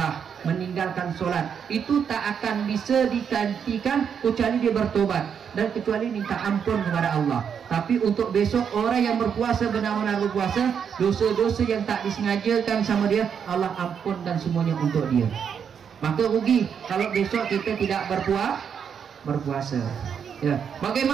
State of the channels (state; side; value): quieter; left; 7.4 dB